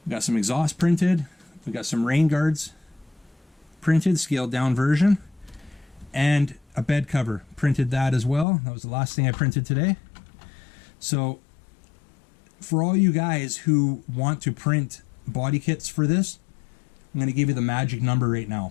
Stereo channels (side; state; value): right; drops out; at 8.5 s